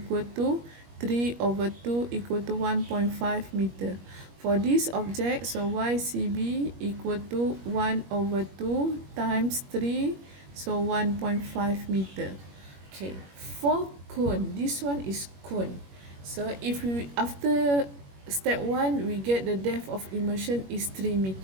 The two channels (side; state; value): left; late; 21 ms